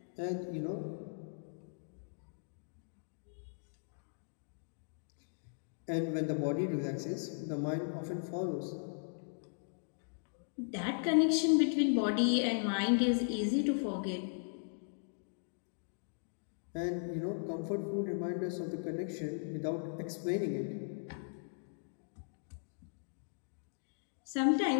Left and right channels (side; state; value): right; silent; digital silence